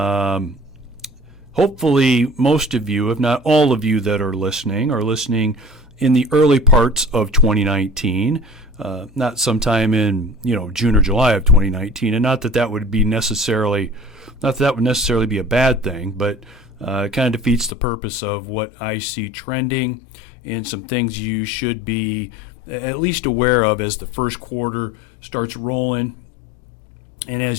Hopefully most of you, if not all of you that are listening in the early parts of 2019, not sometime in June or July of 2019, and not that would necessarily be a bad thing, but it kind of defeats the purpose of what I see trending and some things you should be at least aware of as the first quarter starts rolling and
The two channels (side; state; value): right; drops out; at 17.8 s